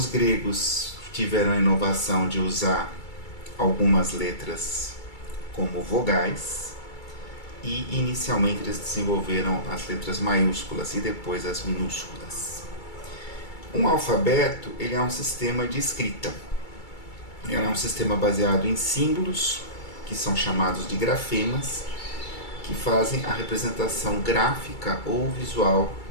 gregos tiveram a inovação de usar algumas letras como vogais e inicialmente eles desenvolveram as letras maiúsculas e depois as minúsculas. Um alfabeto ele é um sistema de escrita. Ele é um sistema baseado em símbolos, que são chamados de grafemas, que fazem a representação gráfica ou visual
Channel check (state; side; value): late; right; 2.3 ms